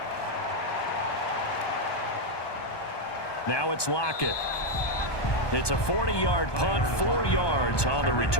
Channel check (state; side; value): late; right; 1.2 ms